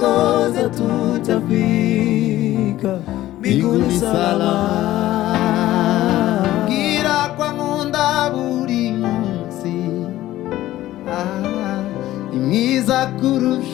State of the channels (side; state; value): right; quieter; 14.9 dB